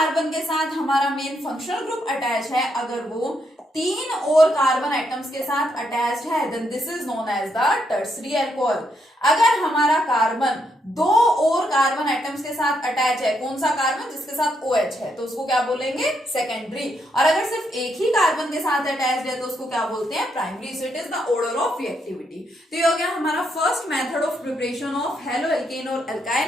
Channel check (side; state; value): both; normal; correlation 0.77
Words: के साथ हमारा मेन फंक्शनल ग्रुप अटैच है, अगर वो 3 और कार्बन एटम्स के साथ अटैच्ड है then this is known as the tertiary alcohol. अगर हमारा कार्बन 2 और कार्बन एटम्स के साथ अटैच है, कौन सा कार्बन, जिसके साथ OH है, तो उसको क्या बोलेंगे, सेकेंडरी। और अगर सिर्फ एक ही कार्बन के साथ अटैच्ड है तो उसको क्या बोलते हैं, primary. So it is the order of reactivity. तो ये हो गया हमारा first method of preparation of halo alkane और